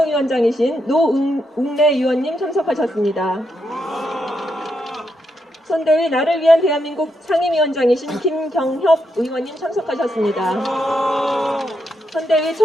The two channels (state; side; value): normal; both; correlation 0.81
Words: 노웅래 의원님 참석하셨습니다. 선대위 나를 위한 대한민국 상임위원장이신 김경협 의원님 참석하셨습니다. 선대위